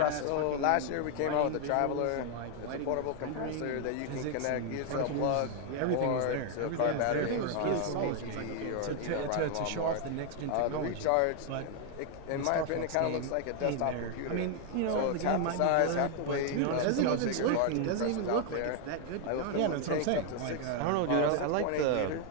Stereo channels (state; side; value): different; both; correlation 0.00